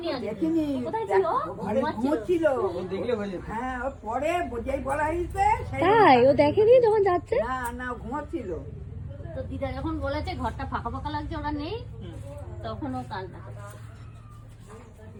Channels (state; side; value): identical; both; correlation 1.00